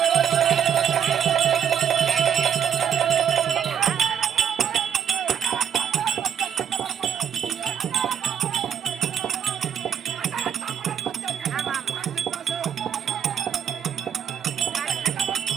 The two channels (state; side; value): quieter; left; 8.6 dB